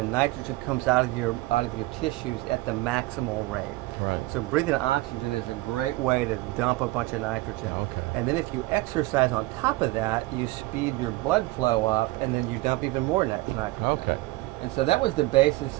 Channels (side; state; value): left; quieter; 20.4 dB